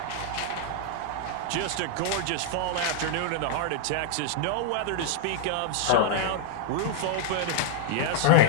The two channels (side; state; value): both; different; correlation -0.01